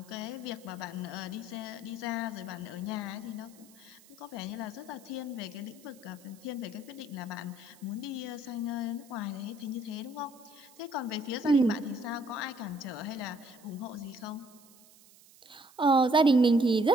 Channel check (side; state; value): right; noise; hiss, 25 dB below the sound